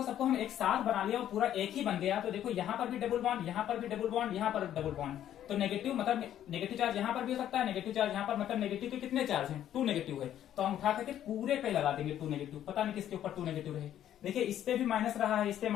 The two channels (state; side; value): quieter; right; 11.2 dB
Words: सबको हम एक साथ बना लिया और पूरा एक ही बन गया तो देखो यहाँ पर भी डबल बॉन्ड, यहाँ पर भी डबल बॉन्ड, यहाँ पर डबल बॉन्ड। तो नेगेटिव मतलब नेगेटिव चार्ज यहाँ पर भी हो सकता है, नेगेटिव चार्ज यहाँ पर, मतलब नेगेटिव के कितने चार्ज हैं? 2 नेगेटिव है। तो हम उठा करके पूरे पे लगा देंगे 2 नेगेटिव, पता नहीं किसके ऊपर 2 नेगेटिव रहे। देखिए इस पे भी माइनस रहा है, इस पे